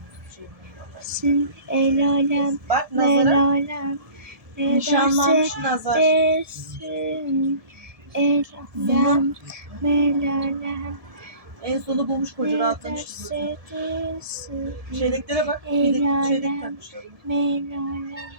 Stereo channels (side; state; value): left; late; 1.7 ms